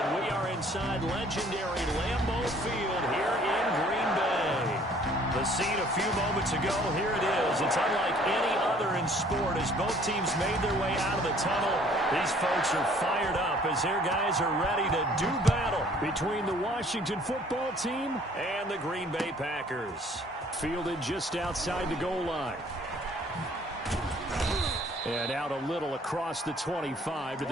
We are inside legendary Lambeau Field here in Green Bay. The scene a few moments ago, here it is. It's unlike any other in sport as both teams made their way out of the tunnel. These folks are fired up as their guys are ready to do battle between the Washington football team and the Green Bay Packers. Fielded just outside the goal line. And out a little across the 25 to the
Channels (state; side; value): normal; both; correlation 0.57